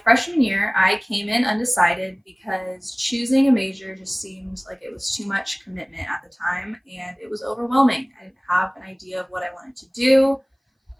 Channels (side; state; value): both; identical; correlation 1.00